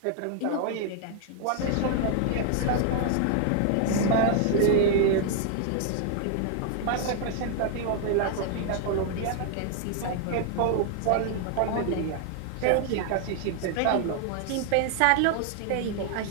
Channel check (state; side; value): different; both; correlation 0.00